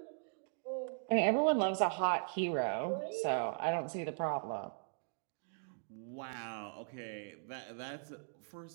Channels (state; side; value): silent; left; digital silence